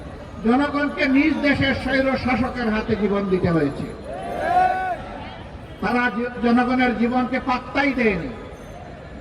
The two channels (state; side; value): identical; both; correlation 1.00